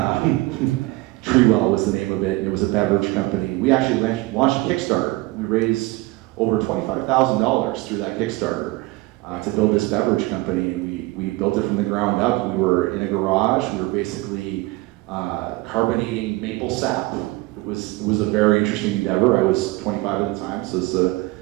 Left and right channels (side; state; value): left; quieter; 21.0 dB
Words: Treewell was the name of it. It was a beverage company. We actually launched a Kickstarter. We raised over $25,000 through that Kickstarter to build this beverage company. And we built it from the ground up. We were in a garage. We were basically carbonating maple sap. It was a very interesting endeavor. I was 25 at the time, so